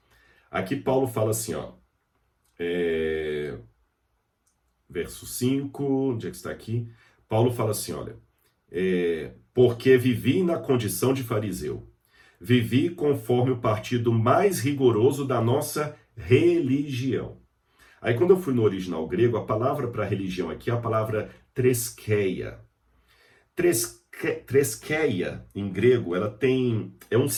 Aqui Paulo fala assim, ó. Verso 5, onde é que está aqui? Paulo fala assim, olha. Porque vivi na condição de fariseu. Vivi conforme o partido mais rigoroso da nossa religião. Aí quando eu fui no original grego, a palavra para religião aqui é a palavra treskeia. Treskeia, em grego, é um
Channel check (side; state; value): both; identical; correlation 1.00